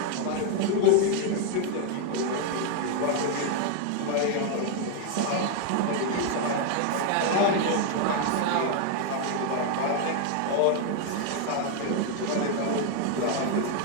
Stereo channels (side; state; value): both; different; correlation 0.01